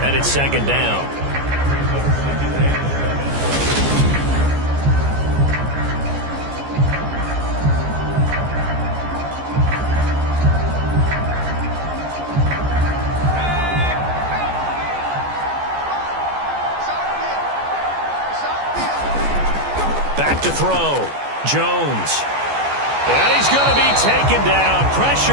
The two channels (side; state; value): left; late; 14 ms